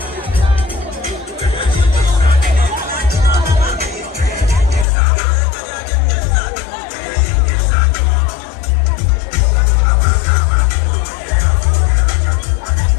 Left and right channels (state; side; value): drops out; right; at 4.9 s